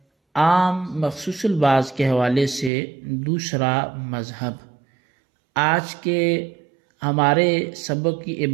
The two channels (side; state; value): left; drops out; at 2.7 s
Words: عام مخصوص البعض کے حوالے سے دوسرا مذہب۔ آج کے ہمارے سبق کی